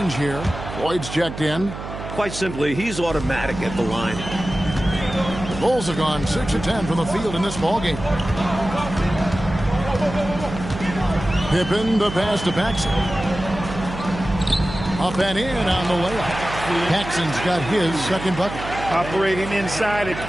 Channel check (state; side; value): noise; right; hum, 9 dB below the sound